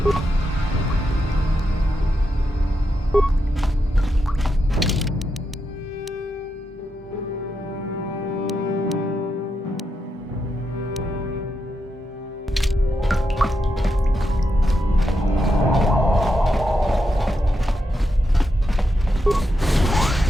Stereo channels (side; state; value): both; normal; correlation 0.85